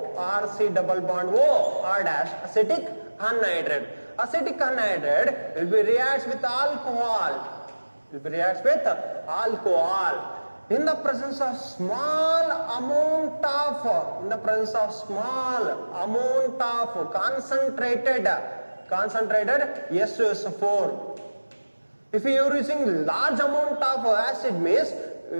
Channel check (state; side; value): inverted; both; correlation -1.00